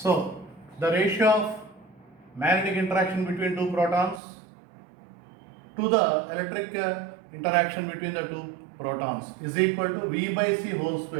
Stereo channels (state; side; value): drops out; left; at 4.2 s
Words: the ratio of magnetic interaction between two protons to the electric interaction between the two protons is equal to v by c whole